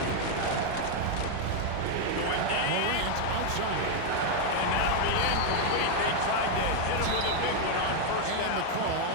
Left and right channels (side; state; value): both; different; correlation 0.01